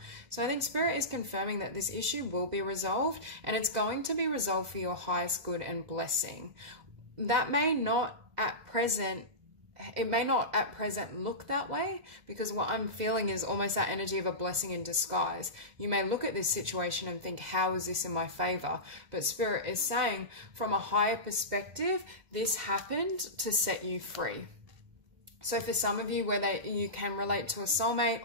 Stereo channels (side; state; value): left; late; 2.0 ms